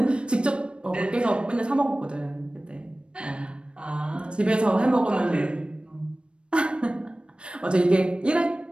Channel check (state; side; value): late; left; 0.057 ms